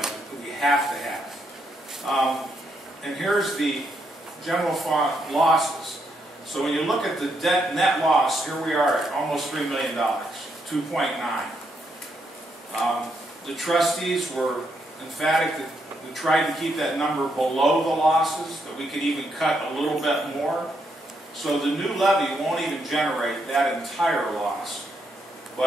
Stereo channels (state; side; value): normal; both; correlation 0.78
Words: that we have to have. And here's the general fund losses. So when you look at the net loss, here we are at almost $3 million, 2.9. The trustees were emphatic that we tried to keep that number below the losses, that we could even cut a little bit more. So the new levy won't even generate that entire loss.